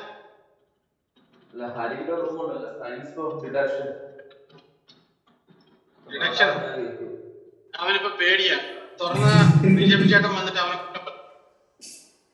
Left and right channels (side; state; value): both; identical; correlation 1.00